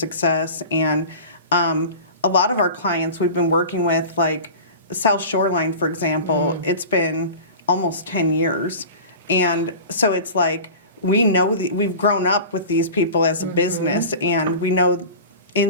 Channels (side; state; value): both; inverted; correlation -0.35